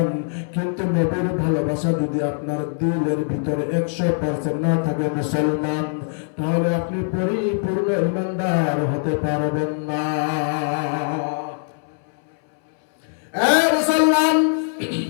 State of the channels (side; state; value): right; silent; 64 dB below the other